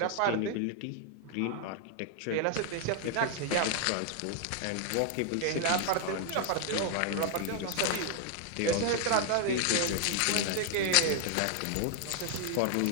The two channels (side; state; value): both; different; correlation 0.00